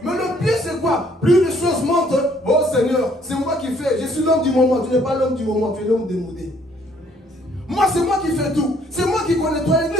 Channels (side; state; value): both; normal; correlation 0.63